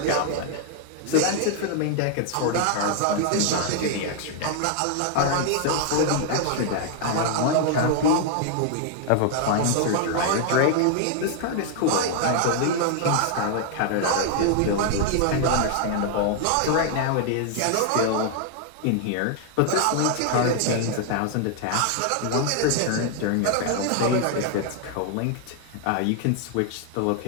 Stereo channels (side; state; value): both; different; correlation 0.00